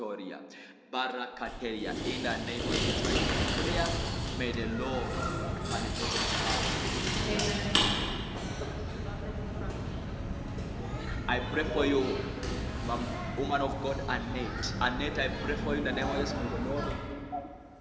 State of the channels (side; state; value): both; identical; correlation 1.00